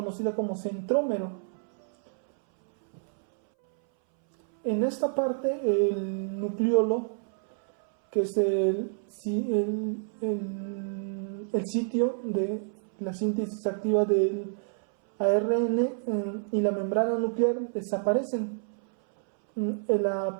como centrómero. En esta parte, el nucleolo, que es el sitio de la síntesis activa del ARN, y la membrana nuclear desaparecen.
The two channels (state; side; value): silent; left; 59 dB below the other